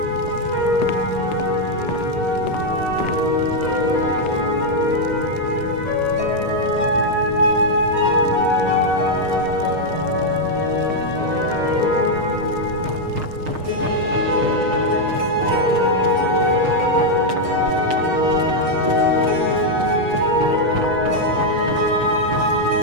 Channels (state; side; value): late; left; 6.6 ms